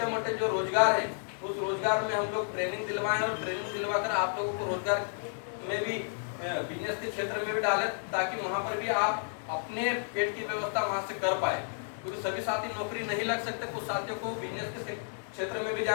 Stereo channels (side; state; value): right; silent; digital silence